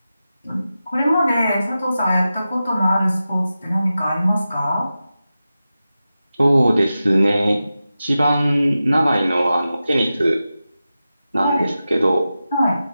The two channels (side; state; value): both; inverted; correlation -0.92